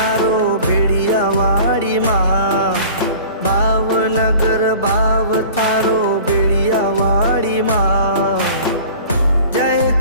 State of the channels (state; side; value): inverted; both; correlation -0.43